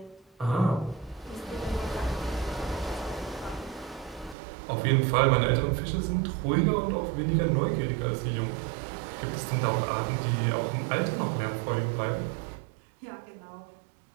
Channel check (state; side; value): drops out; left; at 4.4 s